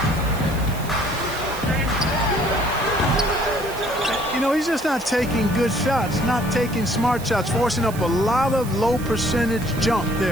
You know, he's just not taking good shots, not taking smart shots, forcing up a lot of low percentage jump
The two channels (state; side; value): noise; right; hiss, 15 dB below the sound